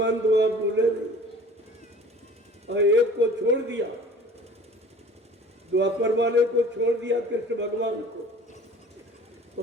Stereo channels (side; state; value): both; normal; correlation 0.46